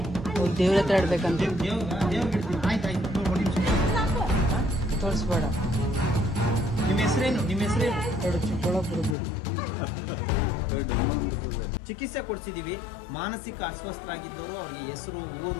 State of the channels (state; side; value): drops out; right; at 9.2 s